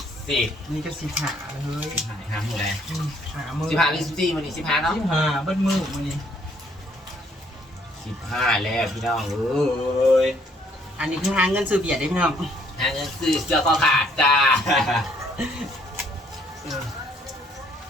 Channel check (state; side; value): normal; both; correlation 0.66